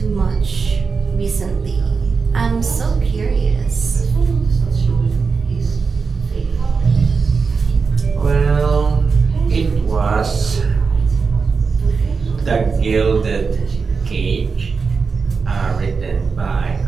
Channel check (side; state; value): left; quieter; 5.0 dB